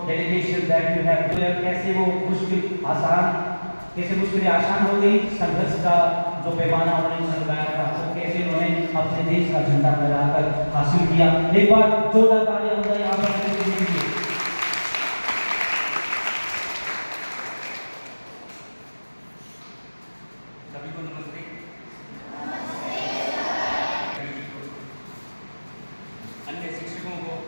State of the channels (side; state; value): both; inverted; correlation -1.00